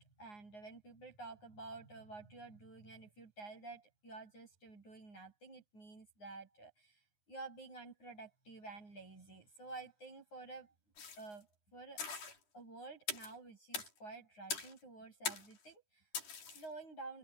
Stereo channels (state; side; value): late; right; 10 ms